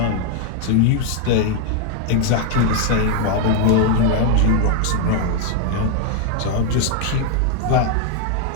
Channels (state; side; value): different; both; correlation 0.00